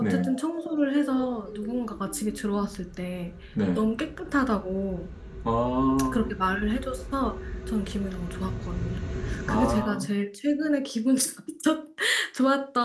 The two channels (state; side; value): identical; both; correlation 1.00